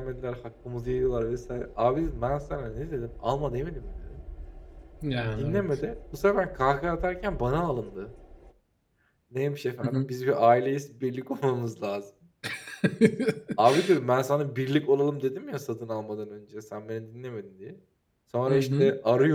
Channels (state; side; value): identical; both; correlation 1.00